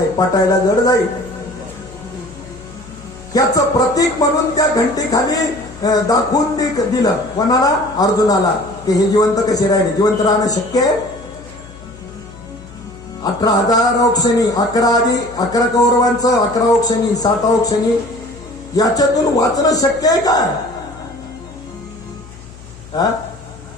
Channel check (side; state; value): left; noise; hum, 19 dB below the sound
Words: पटायला जड जाईल. याचं प्रतीक म्हणून त्या घंटेखाली दाखवून दिलं कोणाला? अर्जुनाला, की हे जिवंत कसे राहिले. जिवंत राहणं शक्य आहे? 18,000 औक्षणी, 11 कौरवांचं, 11 औक्षणी, 7 औक्षणी, याच्यातून वाचणं शक्य आहे काय?